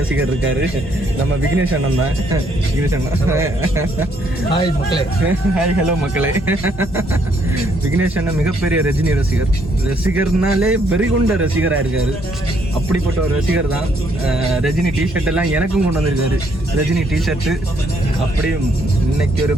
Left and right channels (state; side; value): normal; both; correlation 0.70